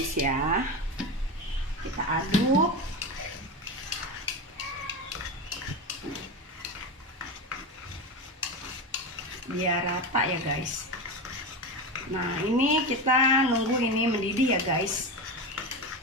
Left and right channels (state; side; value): normal; both; correlation 0.20